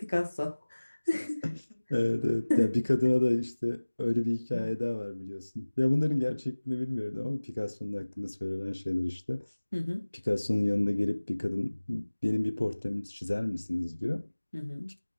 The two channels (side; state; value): both; inverted; correlation -1.00